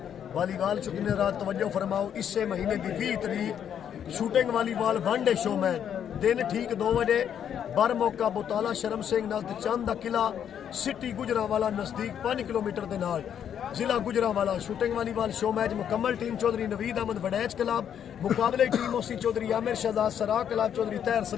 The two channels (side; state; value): right; quieter; 9.0 dB